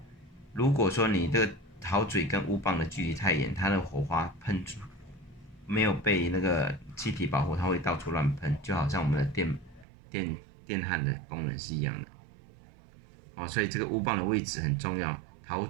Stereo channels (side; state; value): left; drops out; at 9.9 s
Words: 如果说你这个陶嘴跟乌棒的距离太远，它的火花喷出没有被那个气体保护，它会到处乱喷，就好像我们的电焊的功能是一样的。所以这个乌棒的位置很重要，陶